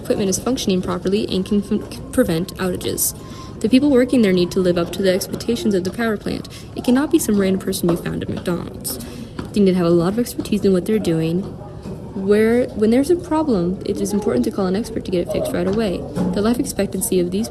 is functioning properly and can prevent outages. The people working there need to live up to the expectations of the power plant. It cannot be some random person you found at McDonald's. They need to have a lot of expertise in what they're doing. When there's a problem, it is important to call an expert to get it fixed right away. The life expectancy of these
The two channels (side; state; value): both; identical; correlation 1.00